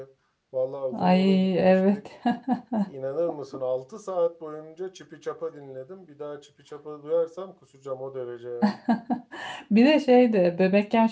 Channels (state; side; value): identical; both; correlation 1.00